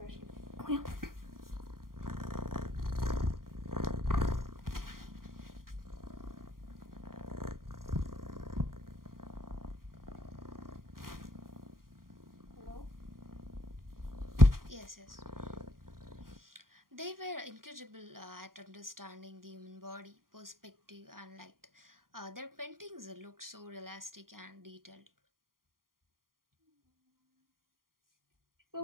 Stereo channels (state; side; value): late; left; 0.91 ms